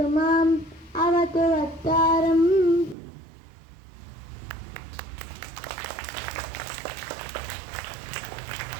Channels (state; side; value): drops out; left; at 3.0 s